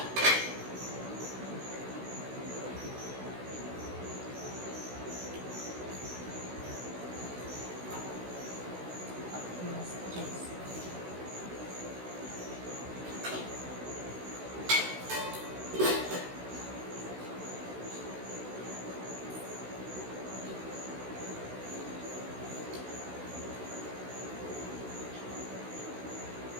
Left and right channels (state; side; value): late; left; 16 ms